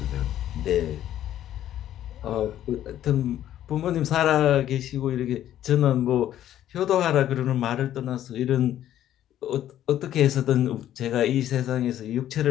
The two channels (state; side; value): quieter; right; 11.9 dB